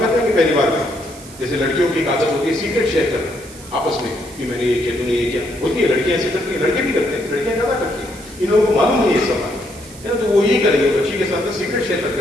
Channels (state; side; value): noise; right; hiss, 18 dB below the sound